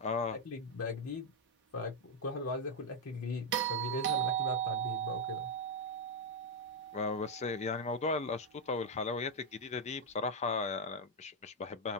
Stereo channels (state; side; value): normal; both; correlation 0.00